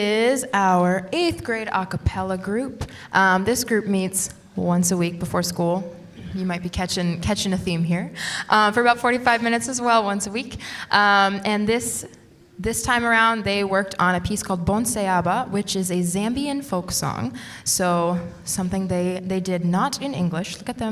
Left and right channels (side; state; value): both; identical; correlation 1.00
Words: our 8th grade a cappella group. This group meets once a week before school. You might be catching a theme here. For about 45 minutes as well, once a week. And this time around, they worked on a piece called Bon Seaba, which is a Zambian folk song. So something they did not in English. Look at